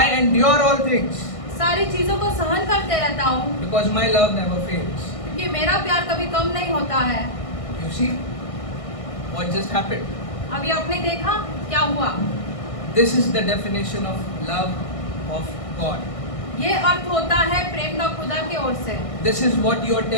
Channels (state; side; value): late; right; 1.6 ms